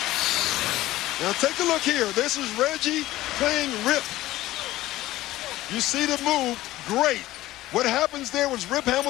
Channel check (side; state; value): right; quieter; 16.3 dB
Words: Now take a look here. This is Reggie playing Rip. You see the move, great. What happens there was Rip